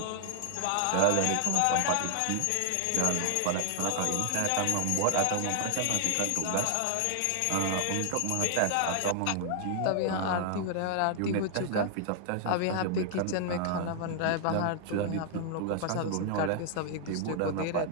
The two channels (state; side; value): different; both; correlation 0.00